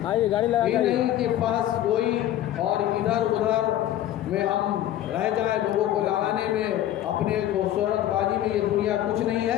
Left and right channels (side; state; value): right; quieter; 12.6 dB